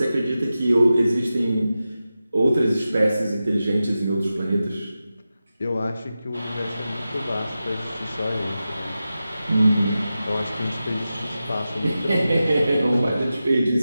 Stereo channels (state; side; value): inverted; both; correlation -0.93